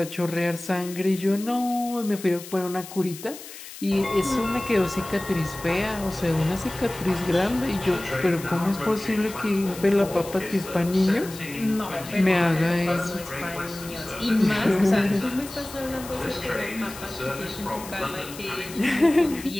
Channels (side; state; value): left; noise; hiss, 14 dB below the sound